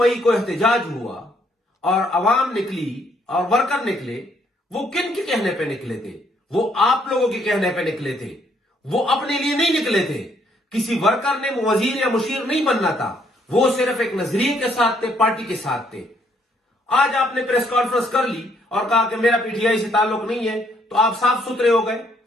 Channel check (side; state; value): both; normal; correlation 0.69